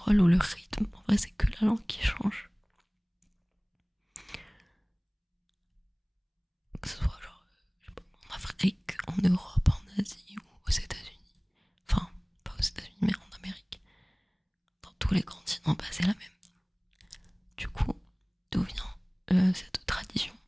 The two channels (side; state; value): both; identical; correlation 1.00